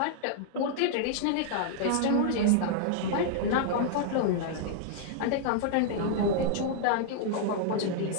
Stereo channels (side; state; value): both; different; correlation -0.01